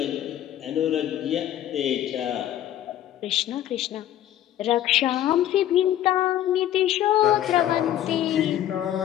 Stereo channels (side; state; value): right; quieter; 12.0 dB